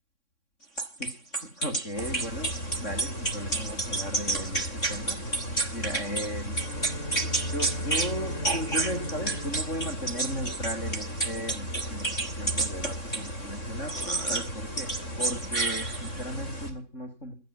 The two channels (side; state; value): right; late; 3.6 ms